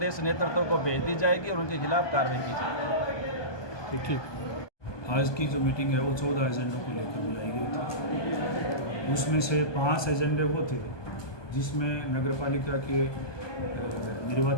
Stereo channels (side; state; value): right; late; 1.2 ms